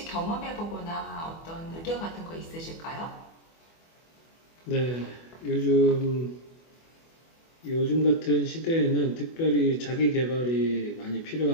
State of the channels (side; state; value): right; late; 24 ms